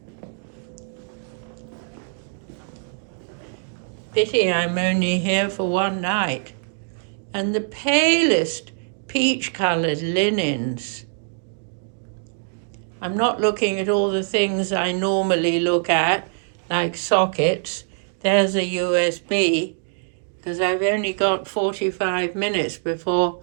Pity I'm only here for one night. And the palest peach-colored linens. I'm not looking at all the things I normally look at, like sockets. There's a USB, because I've only got 45 minutes before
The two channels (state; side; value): silent; left; digital silence